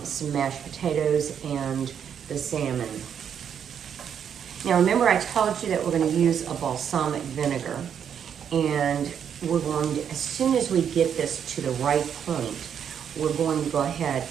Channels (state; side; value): quieter; left; 8.3 dB